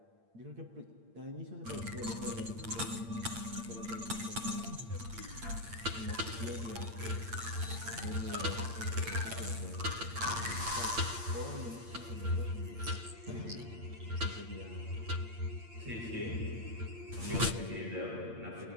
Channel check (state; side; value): late; left; 8.7 ms